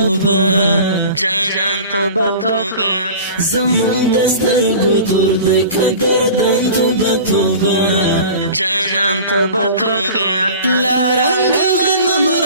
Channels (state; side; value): inverted; both; correlation -0.40